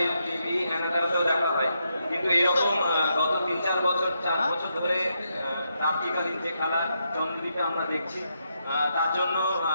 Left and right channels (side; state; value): both; inverted; correlation -0.81